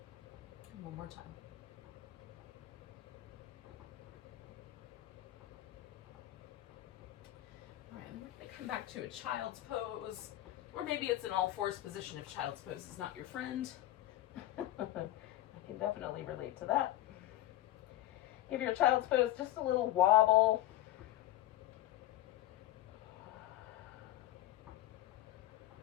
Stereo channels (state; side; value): quieter; right; 14.4 dB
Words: And one more time. All right, and we're going to come back to a child's pose, or maybe it's an all-fours position if child's pose is not your friend. I can definitely relate to that. Give your child's pose just a little wobble.